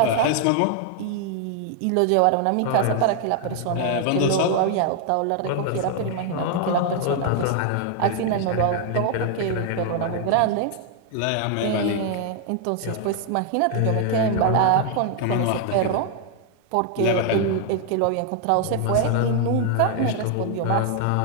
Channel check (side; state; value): both; different; correlation 0.00